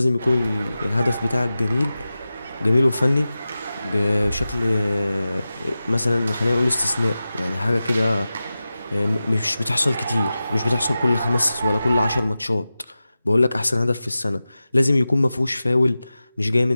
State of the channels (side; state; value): both; inverted; correlation -0.94